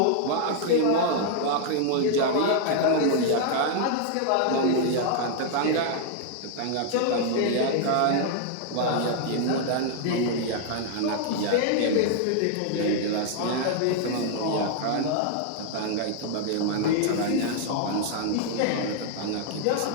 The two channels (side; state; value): both; different; correlation 0.00